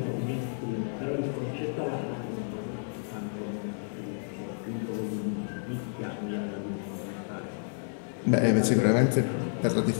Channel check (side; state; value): right; silent; digital silence